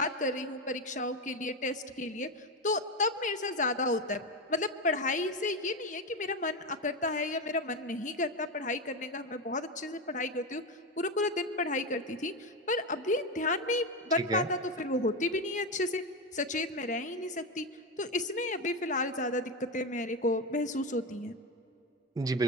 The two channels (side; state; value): both; normal; correlation 0.14